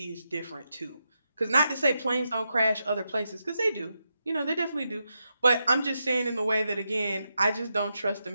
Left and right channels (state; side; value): inverted; both; correlation -0.86